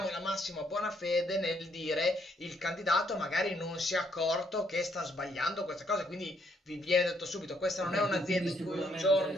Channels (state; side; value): normal; both; correlation 0.71